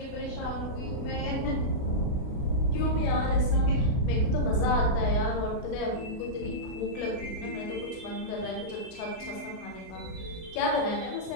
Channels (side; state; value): right; late; 32 ms